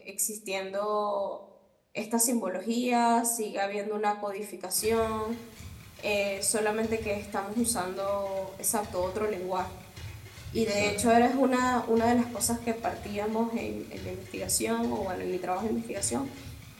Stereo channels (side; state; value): both; identical; correlation 1.00